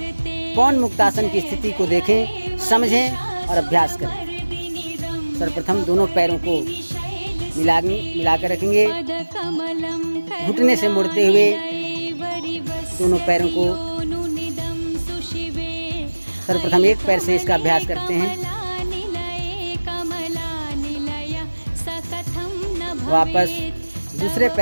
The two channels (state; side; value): inverted; both; correlation -1.00